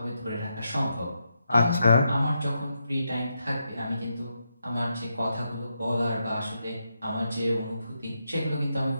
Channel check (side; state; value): both; inverted; correlation -0.83